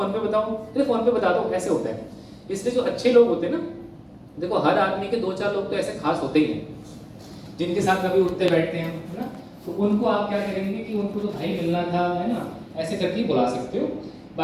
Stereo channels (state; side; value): identical; both; correlation 1.00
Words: पे बताओ, अरे फोन पे बता दो, ऐसे होता है। इसलिए जो अच्छे लोग होते हैं ना, देखो हर आदमी के 2-4 लोग तो ऐसे खास होते ही हैं जिनके साथ कभी उठते बैठते हैं, है ना। तो उनको आप क्या करेंगे कि उनको तो भाई मिलना था, है ना, ऐसे करके बुला सकते हो।